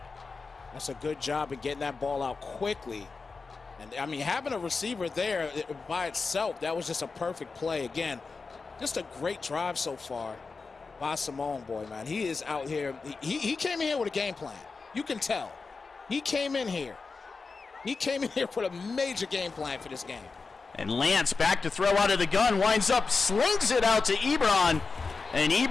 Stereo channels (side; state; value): right; quieter; 4.4 dB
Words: That's a good job of getting that ball out quickly. And, I mean, having a receiver there by itself, that was just a perfect play. Again, just a great drive so far by Soden Bowl, man. He is out here. He came in here with a game plan. You can tell. He came in here. He came in here with a major game plan for this game. And Lance back to throw out of the gun, winds up, slings it out to Ebron. And